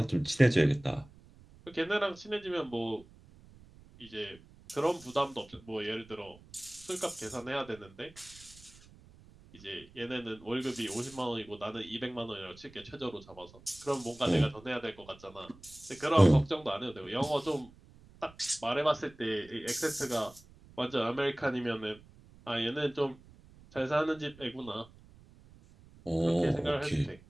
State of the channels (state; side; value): noise; right; rumble, 23 dB below the sound